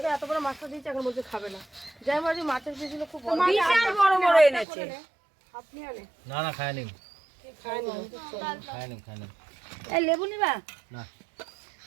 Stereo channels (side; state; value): left; drops out; at 4.7 s